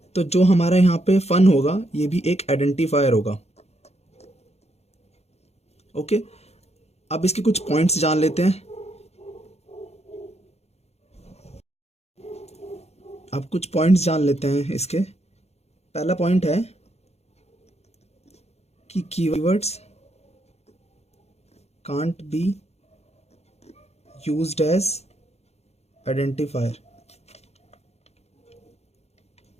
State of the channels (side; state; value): right; late; 0.31 ms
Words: तो जो हमारा यहाँ पे फन होगा ये भी एक आइडेंटिफायर होगा, ओके। अब इसके कुछ पॉइंट्स जान लेते हैं। अब कुछ पॉइंट्स जान लेते हैं इसके। पहला पॉइंट है कि keywords can't be used as identifier.